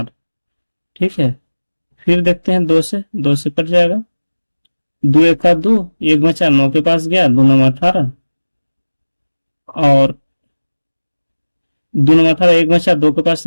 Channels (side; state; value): both; inverted; correlation -1.00